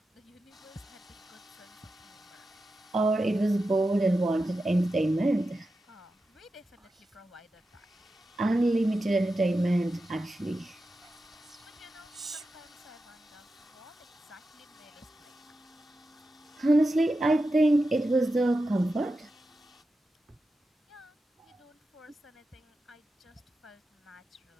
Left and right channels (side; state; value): both; normal; correlation 0.91